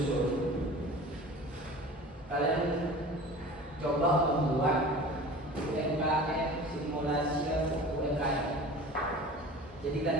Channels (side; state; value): both; normal; correlation 0.40